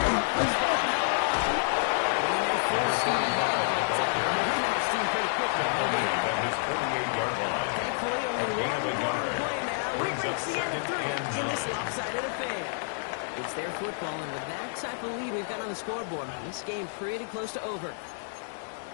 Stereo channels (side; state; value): right; silent; digital silence